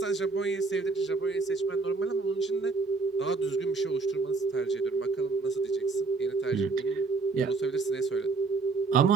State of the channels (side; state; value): left; quieter; 4.1 dB